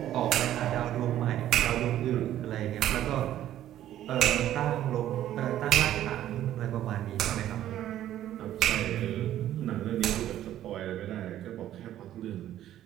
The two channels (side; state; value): left; quieter; 12.3 dB